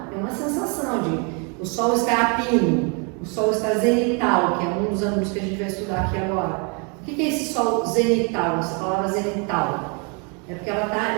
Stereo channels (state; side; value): quieter; left; 35.0 dB